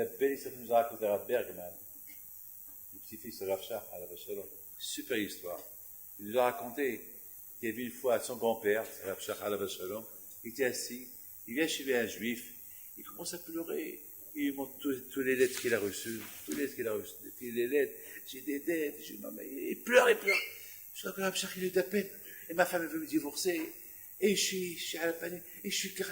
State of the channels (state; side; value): identical; both; correlation 1.00